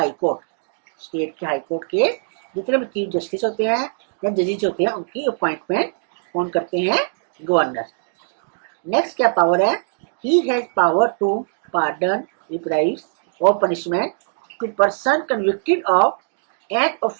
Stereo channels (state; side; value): silent; left; digital silence